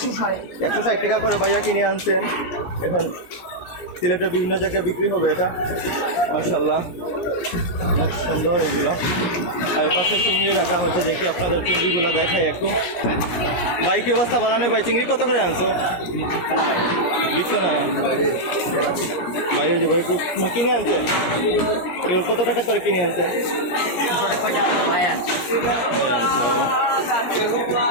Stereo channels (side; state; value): right; late; 17 ms